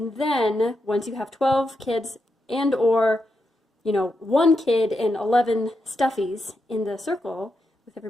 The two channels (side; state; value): both; normal; correlation 0.85